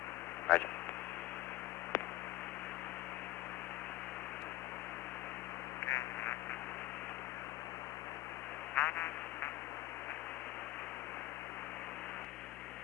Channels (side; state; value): right; quieter; 17.2 dB